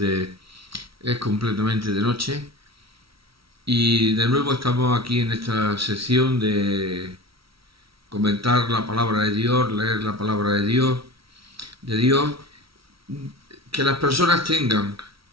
completamente de noche. Y de nuevo estamos aquí en esta sección de comentar la palabra de Dios, leer la palabra de Dios, que las personas tengan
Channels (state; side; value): late; left; 0.75 ms